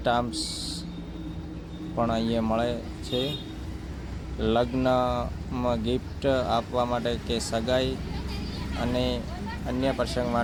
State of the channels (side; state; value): both; identical; correlation 1.00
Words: પણ અહીંયા મળે છે। લગ્નમાં ગિફ્ટ આપવા માટે કે સગાઈ અને અન્ય